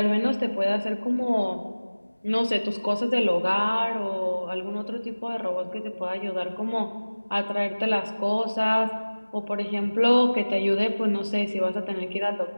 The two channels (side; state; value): both; inverted; correlation -1.00